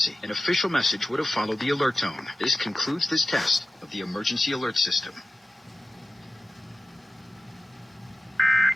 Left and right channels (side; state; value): both; normal; correlation 0.93